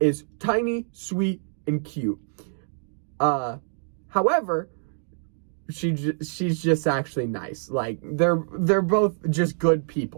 tiny, sweet, and cute. However, she's just actually nice. Like, they're both just good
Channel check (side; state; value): left; silent; digital silence